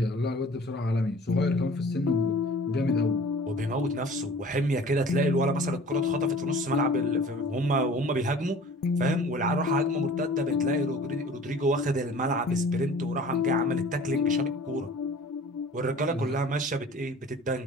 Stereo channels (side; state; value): both; normal; correlation 0.46